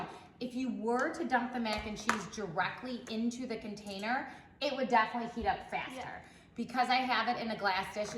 if you were to dump the mac and cheese directly into the container, it would definitely heat up faster. Yeah. Because I have it in a glass dish,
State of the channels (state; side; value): identical; both; correlation 1.00